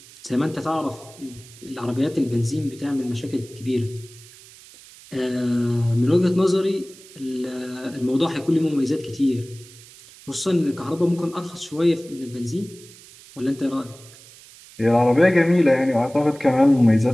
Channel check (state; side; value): noise; right; hiss, 21 dB below the sound